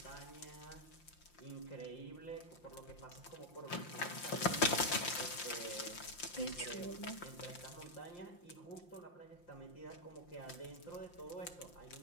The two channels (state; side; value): late; right; 5.7 ms